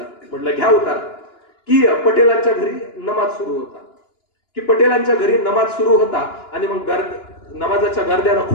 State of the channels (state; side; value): late; right; 2.9 ms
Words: म्हटलं घ्या उतारा की पटेलांच्या घरी नमाज सुरू होता आणि मग नमाजाच्या गर्द्यानं